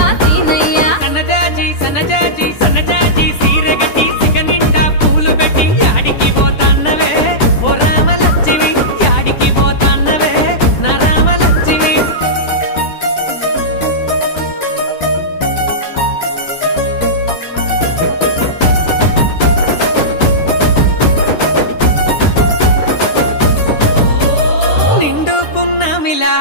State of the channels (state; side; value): late; right; 10 ms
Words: సీనయ్య సన్నజాజి సన్నజాజి సన్నజాజి